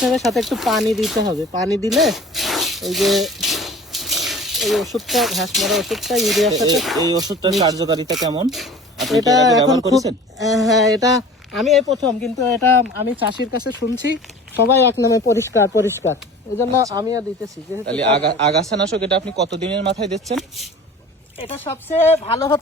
হবে, সাথে একটু পানি দিতে হবে। পানি দিলে এই যে এই ওষুধটা, ঘাস মারা ওষুধটা ইউরিয়ার সাথে, এই ওষুধটার কার্যকারিতা কেমন? আপনি এটা এর আগে এখন ব্যবহার করেছেন? হ্যাঁ, এটা আমি এই প্রথম, কিন্তু এটা আমি চাষির কাছে শুনছি সবাই এক নামে পরিষ্কার পরিষ্কার, এই জন্য আমিও দিতেছি। তাহলে আগাছানাশক এটা আপনি কতদিনের মাথায় দিচ্ছেন? এটা সবচেয়ে ভালো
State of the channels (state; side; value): normal; both; correlation 0.42